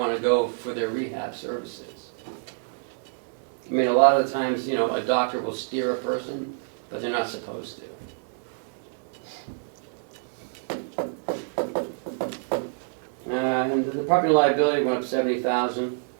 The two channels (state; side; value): silent; left; digital silence